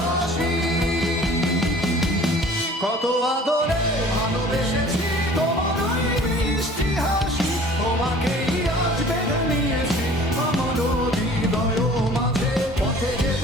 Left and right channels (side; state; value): both; normal; correlation 0.48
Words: কত আদরে ভালোবেসেছি তোমার ওই মিষ্টি হাসি। তোমাকেই আজ বেঁধে নিয়েছি আমার হৃদয় মাঝে, পথে